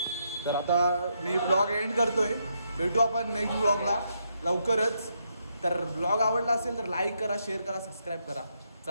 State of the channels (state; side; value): inverted; both; correlation -0.78